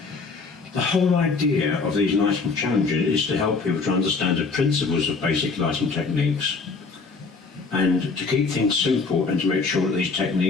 The whole idea of these lighting challenges is to help people to understand the principles of basic lighting techniques and to keep things simple and to make sure that these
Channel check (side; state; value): right; quieter; 4.4 dB